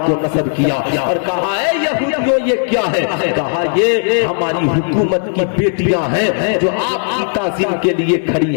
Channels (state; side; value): silent; right; digital silence